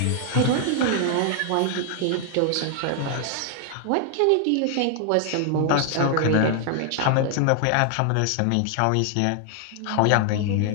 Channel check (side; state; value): both; different; correlation 0.00